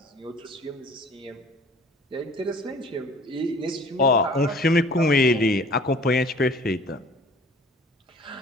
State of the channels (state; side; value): normal; both; correlation 0.49